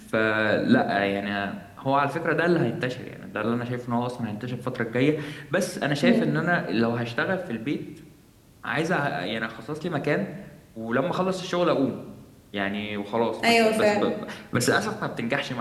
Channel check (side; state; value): both; identical; correlation 1.00